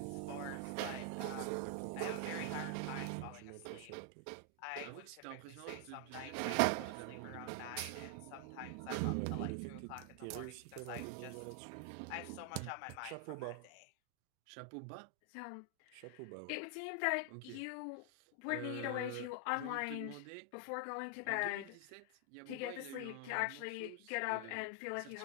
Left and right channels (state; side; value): different; both; correlation 0.00